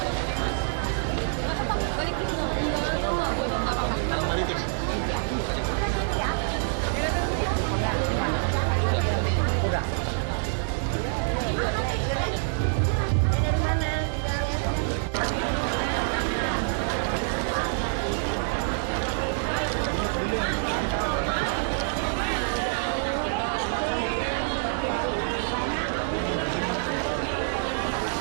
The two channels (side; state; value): left; silent; digital silence